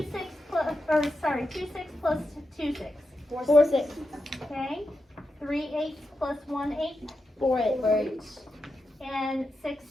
6 plus, or sorry, 2 6 plus 2 6? 4 6. Okay. 3 8 plus 1 8. 4 8. And 6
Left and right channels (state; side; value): normal; both; correlation 0.88